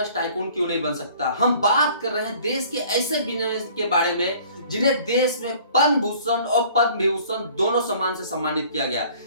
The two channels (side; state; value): both; inverted; correlation -0.52